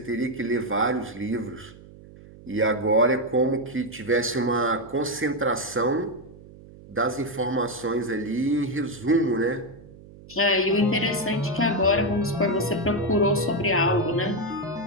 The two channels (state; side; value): noise; right; hum, 20 dB below the sound